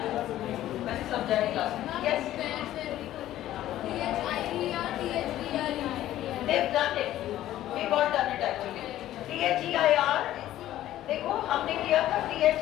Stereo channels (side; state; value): right; quieter; 13.5 dB